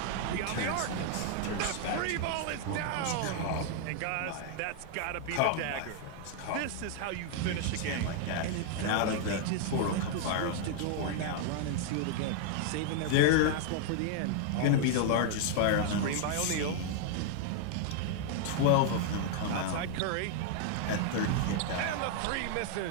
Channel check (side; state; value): both; different; correlation 0.00